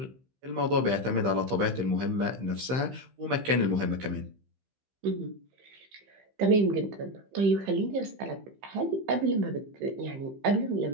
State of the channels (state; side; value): late; left; 15 ms